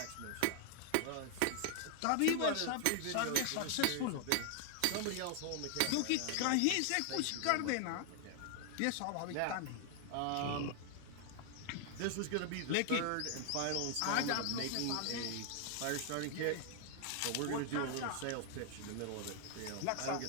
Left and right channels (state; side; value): different; both; correlation 0.00